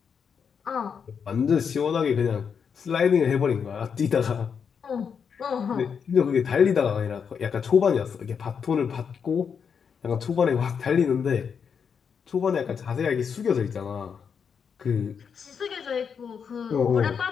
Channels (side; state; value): right; quieter; 6.7 dB